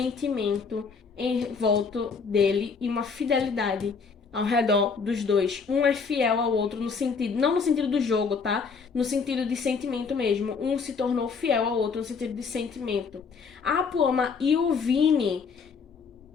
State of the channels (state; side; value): quieter; right; 5.3 dB